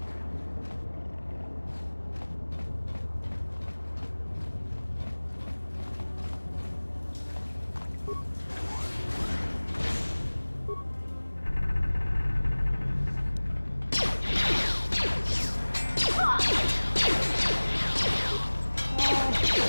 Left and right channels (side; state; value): both; inverted; correlation -1.00